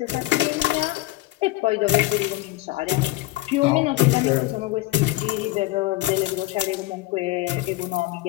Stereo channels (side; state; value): right; quieter; 18.1 dB